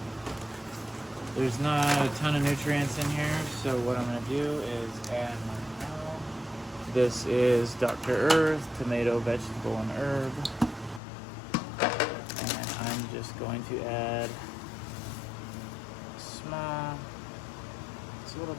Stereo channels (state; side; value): drops out; right; at 11.0 s